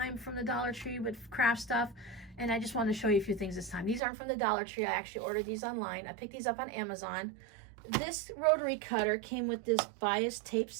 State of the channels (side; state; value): left; drops out; at 4.0 s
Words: from the Dollar Tree with craft stuff, and I just wanted to show you a few things this time. These aren't from the Dollar Tree. I actually ordered these online. I picked these up on Amazon. This rotary cutter came with this bias tape